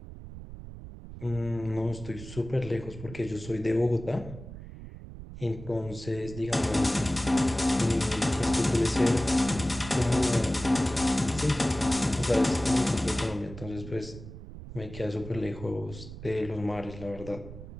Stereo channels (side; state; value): right; noise; rumble, 13 dB below the sound